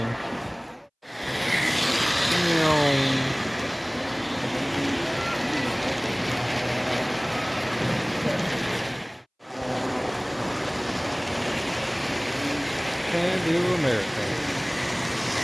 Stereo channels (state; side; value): identical; both; correlation 1.00